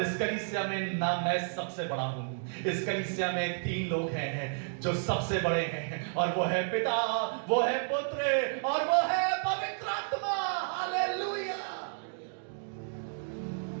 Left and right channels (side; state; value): left; silent; digital silence